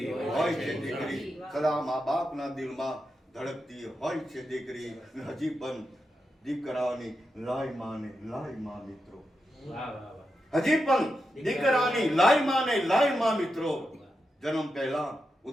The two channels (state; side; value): normal; both; correlation 0.87